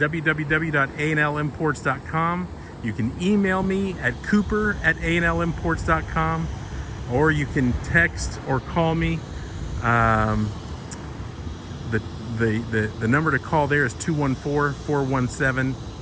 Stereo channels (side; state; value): both; identical; correlation 1.00